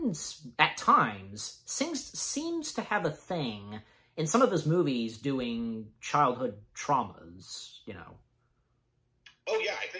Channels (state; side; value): identical; both; correlation 1.00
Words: at times, seems to have a thing in some of his movies doing childhood traumas, you know. Oh, yeah, I